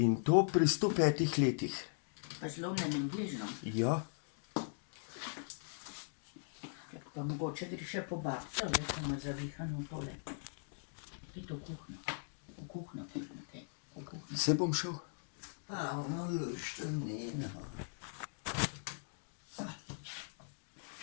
to pri 105 letih. Pa zlomljenim gležnom. Ja. Pa mogoče gre še po babco, le pa ima zavihano tole. Pojdi v kuhno. V kuhno, Matej. V kuhno. Se bom šel. Pa ono luštenino.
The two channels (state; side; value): silent; right; digital silence